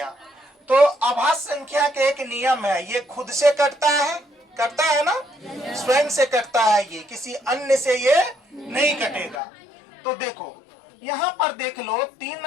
तो अभाज्य संख्या के एक नियम है, ये खुद से कटता है ना, स्वयं से कटता है, ये किसी अन्य से ये नहीं कटेगा। तो देखो यहाँ पर देख लो, 3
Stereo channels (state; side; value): drops out; right; at 9.4 s